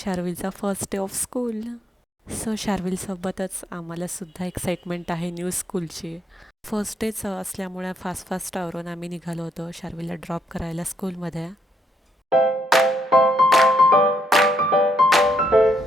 first day of school. So शार्विलसोबतच आम्हालासुद्धा एक्साइटमेंट आहे न्यू स्कूलची. फर्स्ट डेच असल्यामुळे फास्ट आवरून आम्ही निघालो होतो शार्विलला ड्रॉप करायला स्कूलमध्ये.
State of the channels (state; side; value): normal; both; correlation 0.75